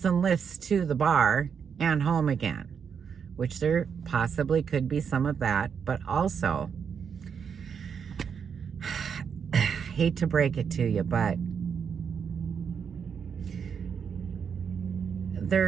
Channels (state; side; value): quieter; left; 6.9 dB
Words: and Lyfts to the bar and home again, which there possibly could be some of that, but also, hate to break it to you, but